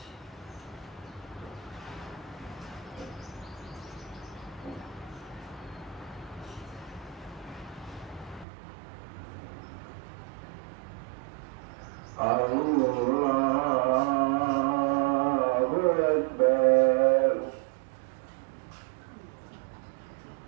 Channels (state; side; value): drops out; left; at 8.5 s